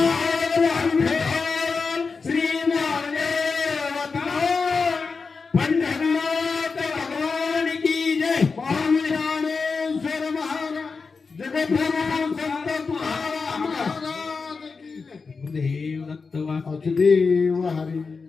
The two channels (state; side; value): quieter; right; 4.7 dB